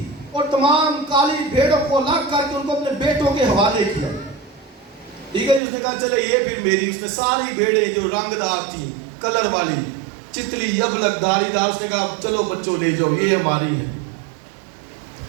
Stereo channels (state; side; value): drops out; left; at 5.6 s